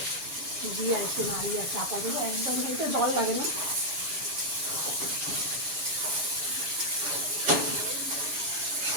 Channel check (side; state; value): left; late; 7.0 ms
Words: দিয়ে একটু নাড়িয়ে আর চাপা দেবো। একদম একটু জল লাগে না।